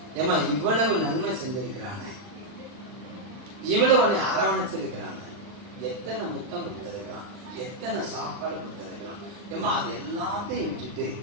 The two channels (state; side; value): late; left; 39 ms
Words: ஏமா இவ்வளவு நன்மை செஞ்சிருக்கிறானே, இவ்வளவு உன்னை அரவணைச்சிருக்கிறான், எத்தனை முத்தம் கொடுத்திருக்கிறான், எத்தனை சாப்பாடு கொடுத்திருக்கிறான், ஏமா அது எல்லாத்தையும் விட்டுட்டு